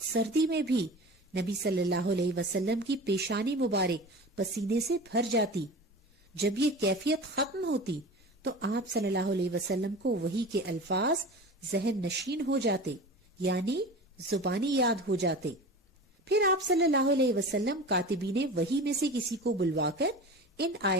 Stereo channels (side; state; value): both; normal; correlation 0.34